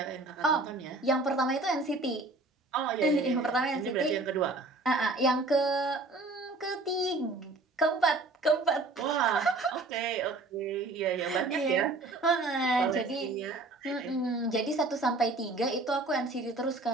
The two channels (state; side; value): quieter; left; 3.1 dB